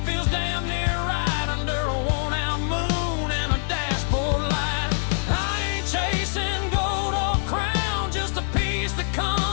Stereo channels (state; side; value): silent; right; digital silence